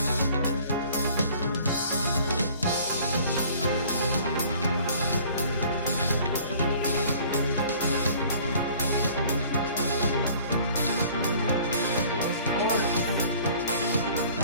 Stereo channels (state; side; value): inverted; both; correlation -0.52